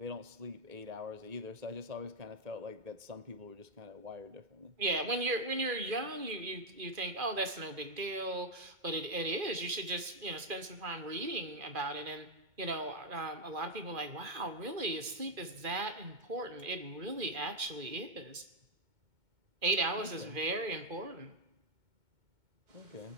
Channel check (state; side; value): late; left; 2.4 ms